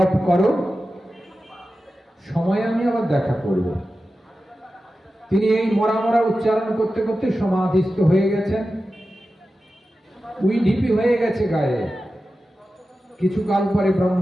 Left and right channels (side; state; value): both; normal; correlation 0.93